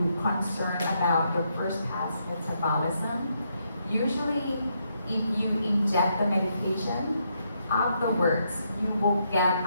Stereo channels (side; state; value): both; inverted; correlation -0.78